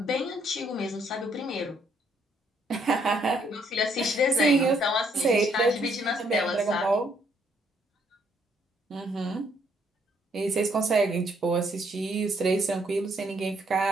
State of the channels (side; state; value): both; normal; correlation 0.69